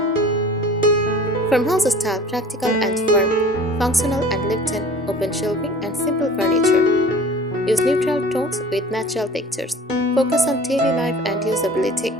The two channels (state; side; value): normal; both; correlation 0.44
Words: Farmhouse style, practical and firm, functional and lived-in, open shelving and simple furniture. Use neutral tones with natural textures. Focus on daily life and usability.